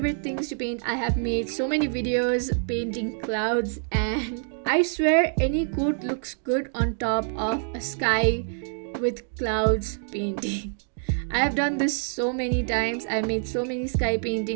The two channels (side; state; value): left; silent; digital silence